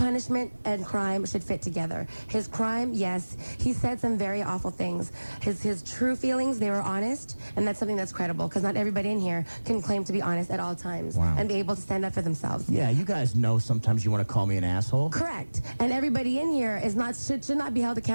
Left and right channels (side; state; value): both; inverted; correlation -1.00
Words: and crime should fit together. His crime, yes, he said some very awful things. His true feelings, they were honest, and that's something that's credible, because not everybody in here can claim to be honest at all times and be able to stand up for themselves. Yeah, you guys know sometimes you want to call me an asshole. Correct. And everybody in here should not be held